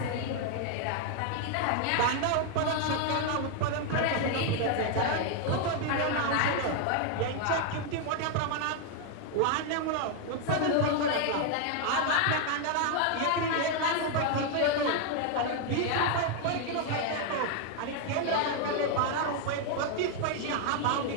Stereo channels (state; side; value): different; both; correlation 0.00